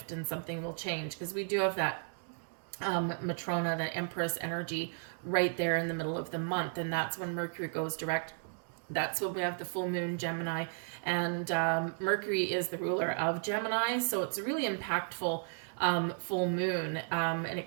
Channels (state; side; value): silent; left; digital silence